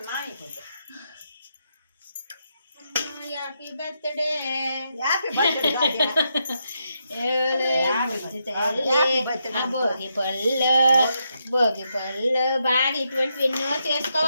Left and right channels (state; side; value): inverted; both; correlation -0.82